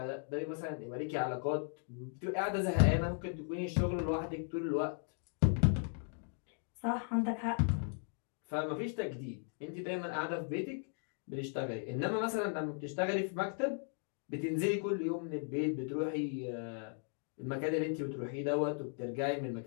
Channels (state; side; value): silent; right; 53 dB below the other